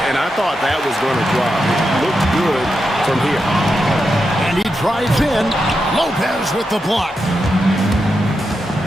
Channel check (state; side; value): normal; both; correlation 0.87